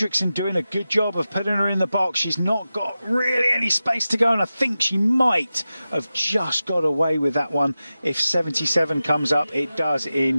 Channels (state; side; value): inverted; both; correlation -0.93